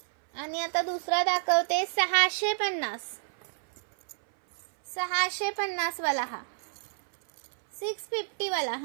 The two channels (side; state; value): left; silent; 57 dB below the other